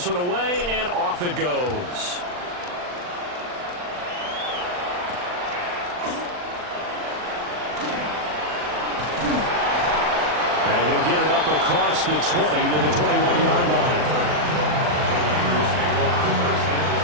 one away, and off it goes. And he'll get it up across the 20 to the 21-yard line.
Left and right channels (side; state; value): left; late; 40 ms